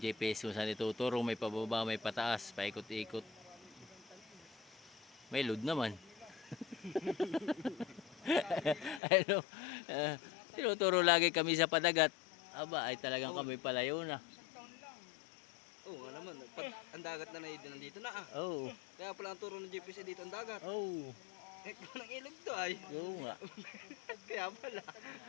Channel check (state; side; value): drops out; right; at 9.0 s